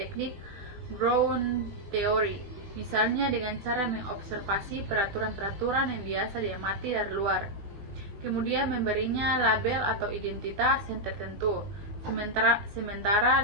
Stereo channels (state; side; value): late; left; 20 ms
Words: Brown Theory, misalnya dengan cara mengobservasi peraturan-peraturan yang biasa diamati dari luar, kemudian memberinya label atau identitas yang tertentu. Sementara